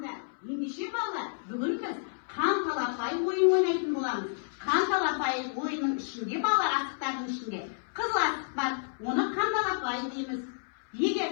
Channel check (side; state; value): right; silent; 58 dB below the other